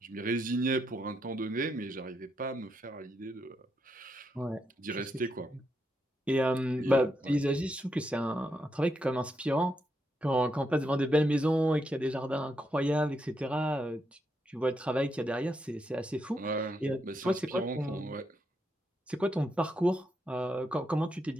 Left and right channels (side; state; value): both; normal; correlation 0.81